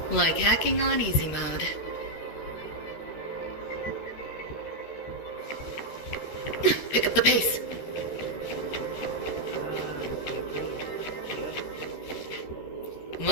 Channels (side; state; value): right; late; 13 ms